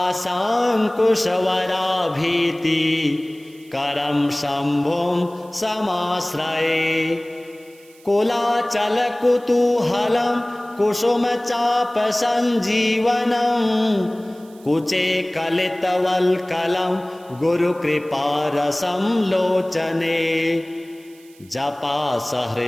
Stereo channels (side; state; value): right; noise; hiss, 27 dB below the sound